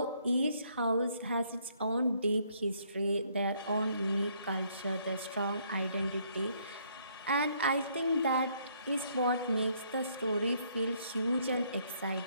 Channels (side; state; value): both; inverted; correlation -0.68